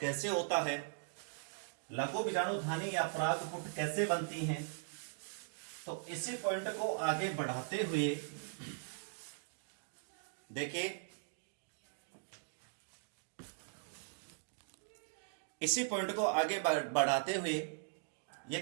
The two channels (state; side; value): silent; left; digital silence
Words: कैसे होता है, लघु बीजाणु धानी या परागपुट कैसे बनती हैं, तो इसी पॉइंट को आगे बढ़ाते हुए देखिए, इसी पॉइंट को आगे बढ़ाते हुए ये